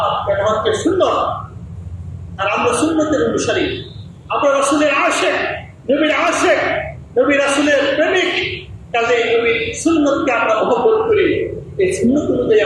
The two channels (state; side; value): identical; both; correlation 1.00